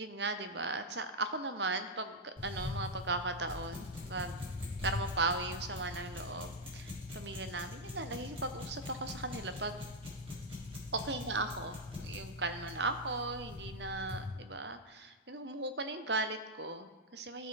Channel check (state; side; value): normal; both; correlation -0.01